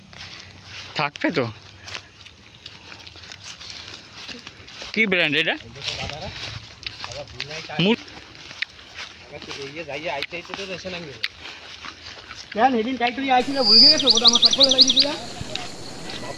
থাকবে তো কি ব্র্যান্ড এটা? সেদিন টাইটলি আইছিল ভুল গেছো, ওটা আমার সব করে লাগিয়ে দিলা।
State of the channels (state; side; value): identical; both; correlation 1.00